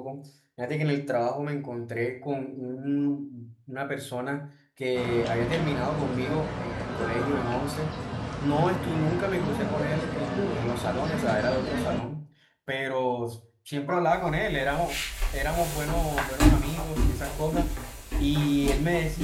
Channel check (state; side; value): identical; both; correlation 1.00